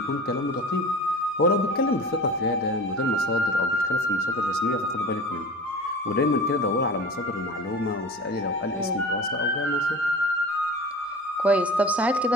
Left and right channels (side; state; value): both; normal; correlation 0.36